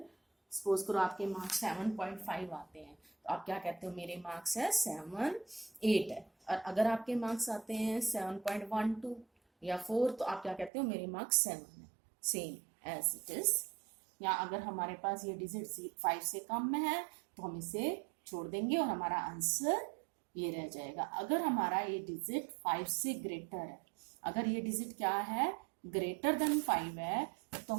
सपोज करो आपके मार्क्स 7.5 आते हैं, तो आप क्या कहते हो, मेरे मार्क्स है 7.8 है। और अगर आपके मार्क्स आते हैं 7.12 या 4, तो आप क्या कहते हो, मेरे मार्क्स 7 है, सेम एज इट इज। या अगर हमारे पास ये डिजिट 5 से कम में है, तो हम इसे छोड़ देंगे और हमारा आंसर ये रह जाएगा। अगर हमारा ये डिजिट 5 से ग्रेटर है, अगर ये डिजिट क्या है, ग्रेटर देन 5 है, तो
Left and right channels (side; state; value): left; drops out; at 10.7 s